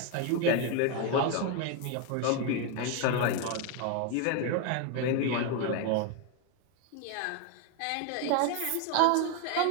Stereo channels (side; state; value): both; different; correlation 0.02